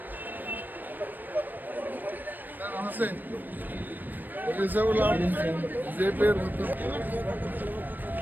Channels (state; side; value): late; left; 0.090 ms